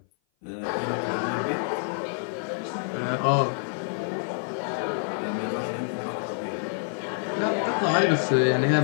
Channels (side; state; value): right; silent; 56 dB below the other